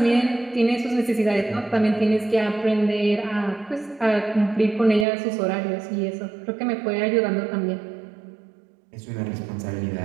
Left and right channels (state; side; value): drops out; left; at 5.1 s